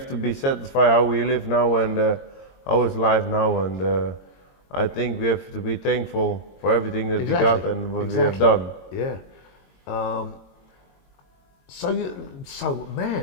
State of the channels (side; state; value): right; late; 22 ms